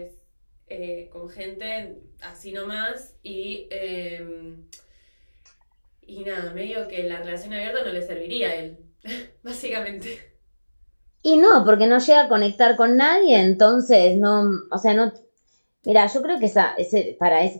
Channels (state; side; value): inverted; both; correlation -1.00